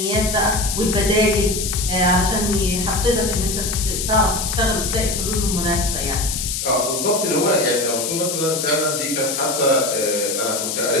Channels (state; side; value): noise; left; hiss, 3 dB below the sound